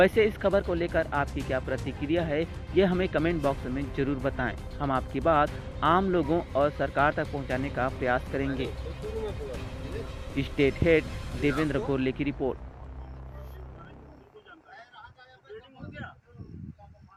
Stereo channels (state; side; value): identical; both; correlation 1.00